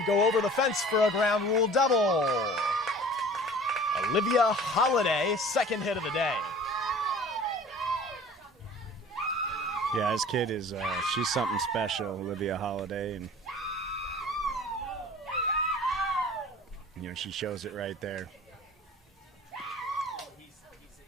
go over the fence for a ground rule double. Olivia Holiday, second hit of the day. Yeah, this kid is, she's something special, Olivia Holiday. And, she shows it right there.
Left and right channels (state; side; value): normal; both; correlation 0.45